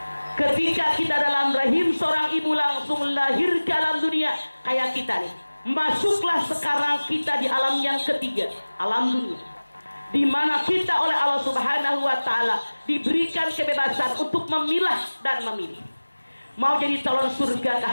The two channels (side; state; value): both; inverted; correlation -1.00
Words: ketika kita dalam rahim seorang ibu langsung lahir ke alam dunia kayak kita nih. Masuklah sekarang kita di alam yang ketiga, alam dunia, di mana kita oleh Allah Subhanahu wa Ta'ala diberikan kebebasan untuk memilah dan memilih. Mau jadi calon surgakah